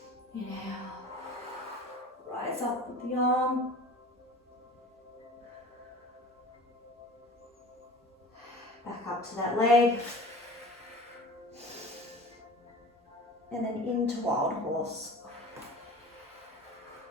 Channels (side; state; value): both; normal; correlation 0.40